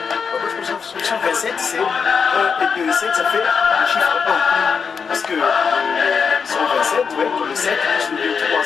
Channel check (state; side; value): quieter; right; 5.9 dB